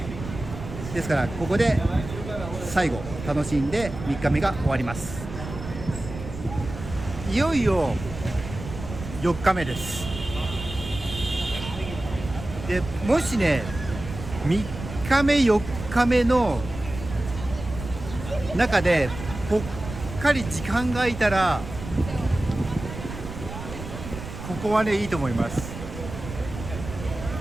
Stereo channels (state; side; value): noise; right; rumble, 10 dB below the sound